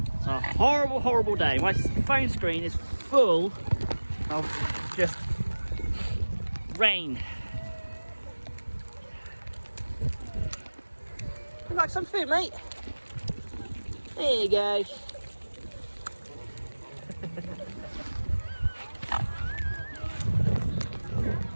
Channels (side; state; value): both; inverted; correlation -1.00